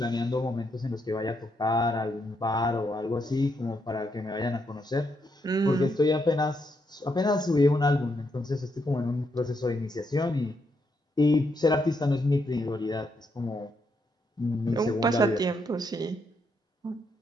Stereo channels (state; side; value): normal; both; correlation 0.78